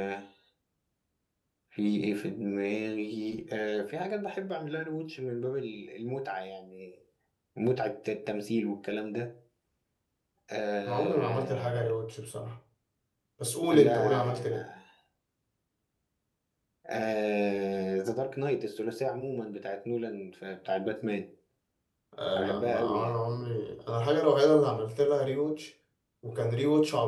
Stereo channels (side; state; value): both; identical; correlation 1.00